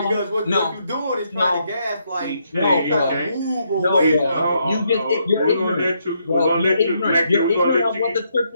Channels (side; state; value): both; inverted; correlation -0.76